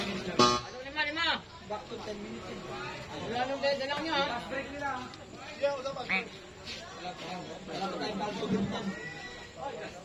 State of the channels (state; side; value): identical; both; correlation 1.00